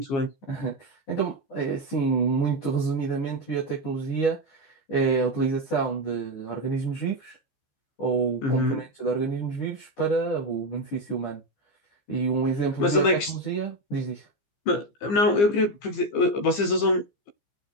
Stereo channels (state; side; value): late; right; 15 ms